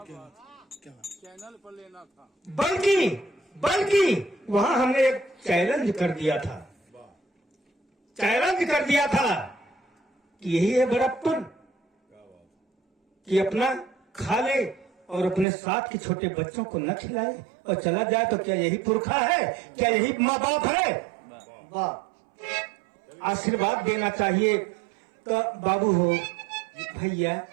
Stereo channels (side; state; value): left; drops out; at 15.5 s